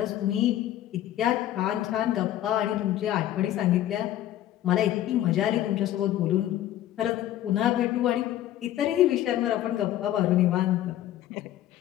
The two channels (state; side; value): quieter; right; 13.0 dB